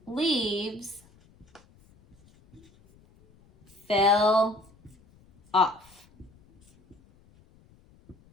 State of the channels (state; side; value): noise; left; rumble, 30 dB below the sound